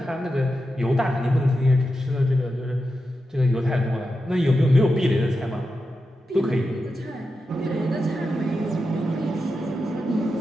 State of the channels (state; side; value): normal; both; correlation 0.89